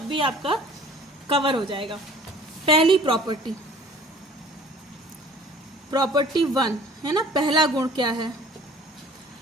भी आपका कवर हो जाएगा। पहली प्रॉपर्टी, प्रॉपर्टी 1 है ना, पहला गुण क्या है?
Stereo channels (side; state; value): both; normal; correlation 0.50